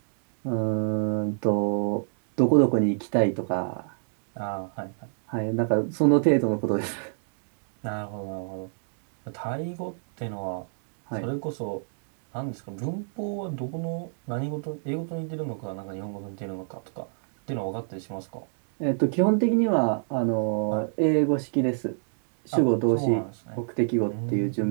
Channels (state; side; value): silent; left; digital silence